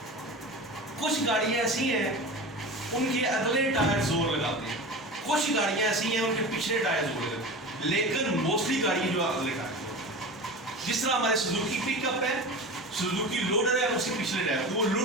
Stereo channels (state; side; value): normal; both; correlation 0.31